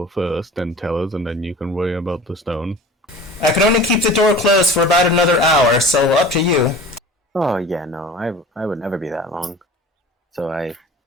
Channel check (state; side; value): normal; both; correlation 0.41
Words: first, then tell us, and then you can worry about the stone. I can only keep the door closed for about another hour, so up to you. Oh, yeah, no, I would never be that long. So